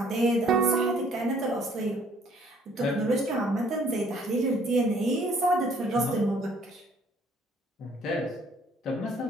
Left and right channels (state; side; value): normal; both; correlation 0.60